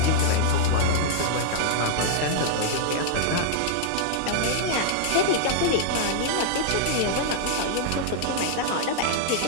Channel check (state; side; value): different; both; correlation -0.01